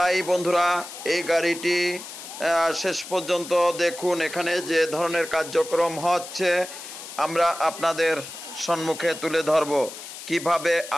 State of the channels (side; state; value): left; noise; hiss, 12 dB below the sound